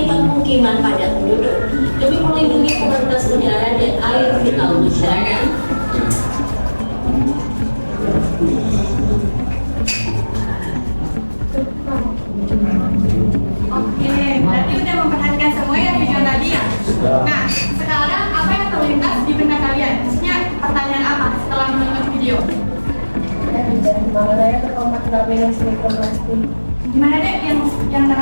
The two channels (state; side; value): inverted; both; correlation -1.00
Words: permukiman padat penduduk, demi melindungi kualitas udara dan air vital masyarakat. Oke, berarti udah memperhatikan semua ya video tadi ya? Nah, sekarang apa yang terlintas di benak kalian? Maksudnya pertanyaan apa setelah menonton video? Gimana ya terkontaminasi mikroplastik? Gimana deh yang